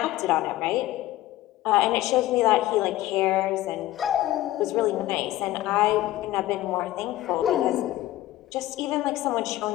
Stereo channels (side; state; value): right; quieter; 15.6 dB